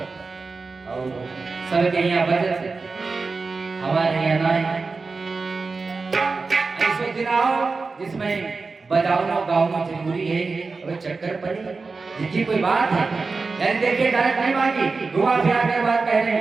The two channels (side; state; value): left; quieter; 4.2 dB